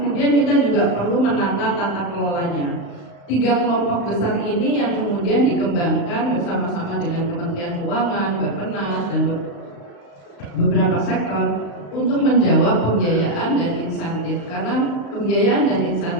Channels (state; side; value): late; right; 35 ms